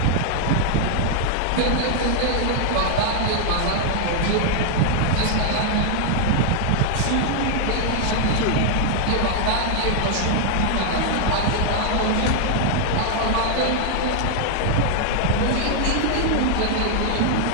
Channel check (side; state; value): both; different; correlation 0.00